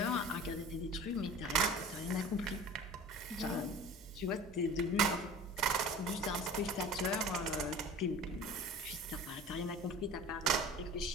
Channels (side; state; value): both; normal; correlation 0.40